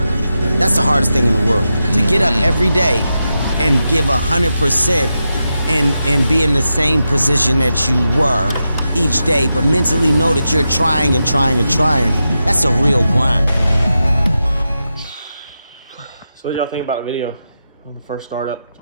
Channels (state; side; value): inverted; both; correlation -0.89